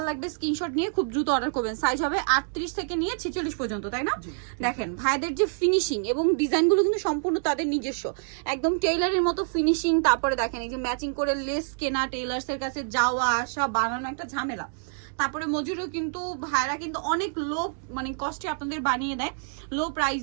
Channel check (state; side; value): silent; left; digital silence